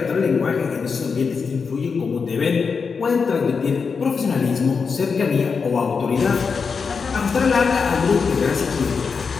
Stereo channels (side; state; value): right; quieter; 5.4 dB